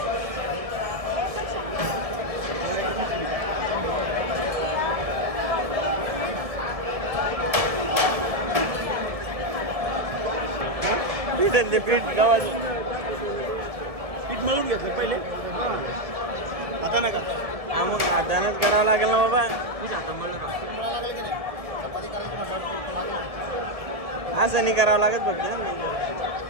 पीठ गावाची पीठ मिळून घेतलं पहिले, आता नका. हा मग हातानंच करावं लागेल ना बाबा. असं नाही करावं लागत फक्त.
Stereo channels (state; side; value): late; left; 1.7 ms